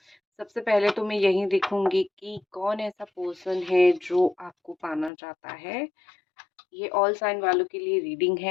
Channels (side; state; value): right; drops out; at 5.1 s